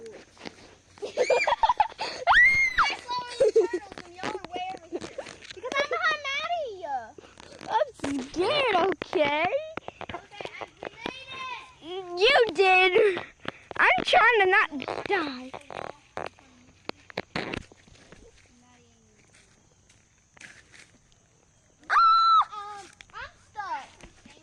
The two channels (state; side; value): identical; both; correlation 1.00